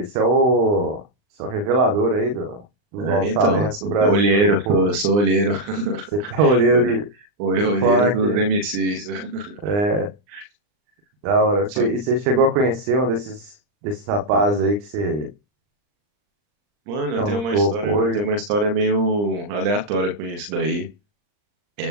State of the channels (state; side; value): late; left; 39 ms